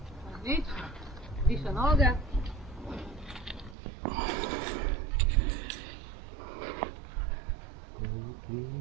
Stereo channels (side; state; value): left; drops out; at 3.8 s